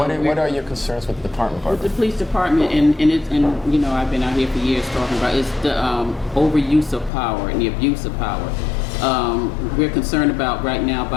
are your concerns with the department? With the police department, and you know, I've been out here for years talking about it's the overuse of power and the abuse of power. We're concerned about right now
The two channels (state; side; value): drops out; right; at 7.1 s